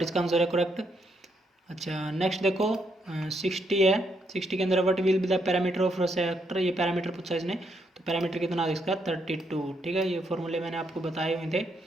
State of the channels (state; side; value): normal; both; correlation 0.76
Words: इसका आंसर है करेक्ट। अच्छा नेक्स्ट देखो 60 है, 60 के अंदर what will be the parameter of sector, ये पैरामीटर पूछा इसने। तो पैरामीटर कितना है इसका 32, ठीक है। ये फॉर्मूले मैंने आपको बताए हुए थे,